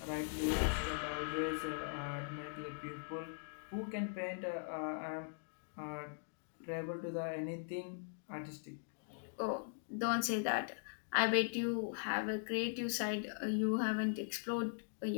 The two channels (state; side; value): silent; right; digital silence